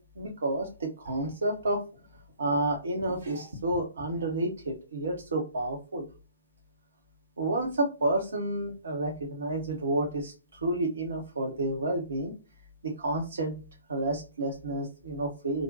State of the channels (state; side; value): inverted; both; correlation -0.54